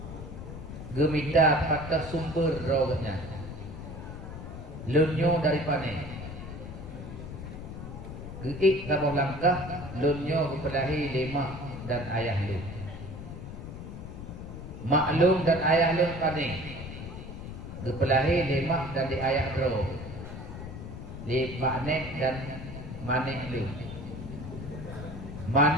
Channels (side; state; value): left; noise; rumble, 10 dB below the sound